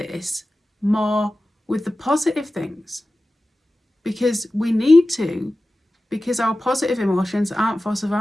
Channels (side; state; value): both; normal; correlation 0.95